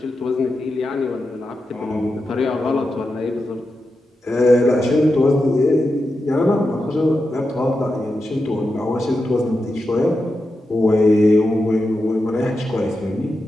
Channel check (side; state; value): both; normal; correlation 0.89